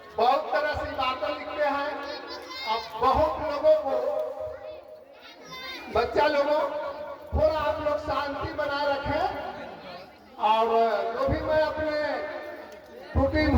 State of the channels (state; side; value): identical; both; correlation 1.00